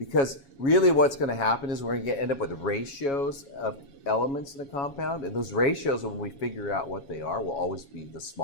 really what's going to happen is we're going to end up with ratios of elements in a compound, and those ratios, when we figure out what they are, will always be the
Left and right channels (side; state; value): right; late; 7.2 ms